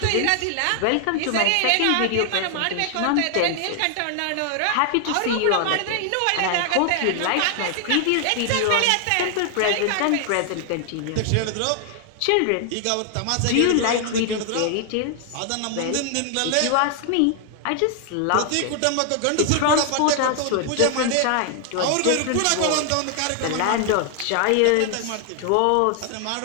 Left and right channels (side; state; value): both; different; correlation 0.00